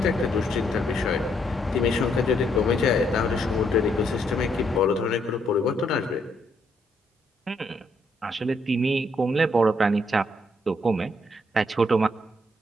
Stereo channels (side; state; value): both; normal; correlation 0.73